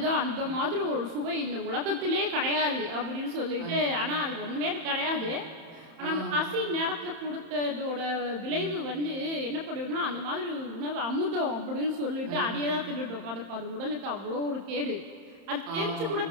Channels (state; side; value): late; left; 31 ms